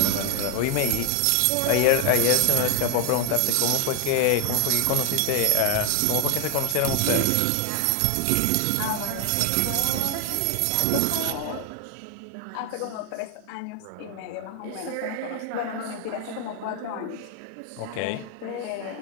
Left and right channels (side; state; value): both; different; correlation 0.00